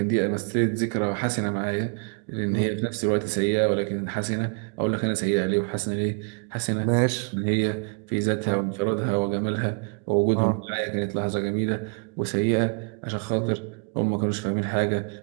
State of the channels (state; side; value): quieter; left; 39.1 dB